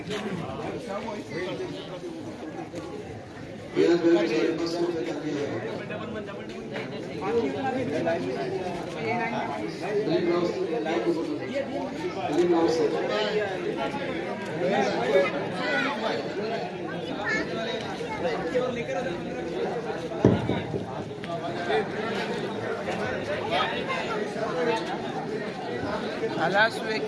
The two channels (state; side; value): identical; both; correlation 1.00